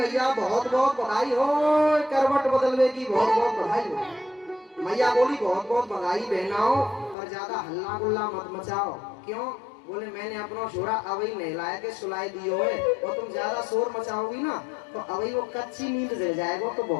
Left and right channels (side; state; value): right; drops out; at 7.2 s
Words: बहुत बहुत बधाई हो, करवट बदलवे की बहुत बहुत बधाई हो। मैया बोली, बहुत बहुत बधाई बहनाओ, पर ज्यादा हल्ला गुल्ला मत मचाओ। क्यों? बोले, मैंने अपना छोरा अभी नहलाया के सुलाई दियो है, और तुम ज्यादा शोर मचाओगी ना तो अभी वो कच्ची नींद ले जाएगा, तो